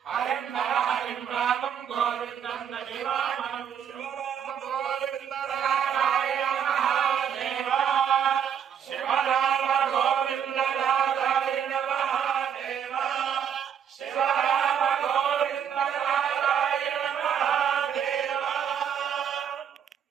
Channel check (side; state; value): left; quieter; 8.4 dB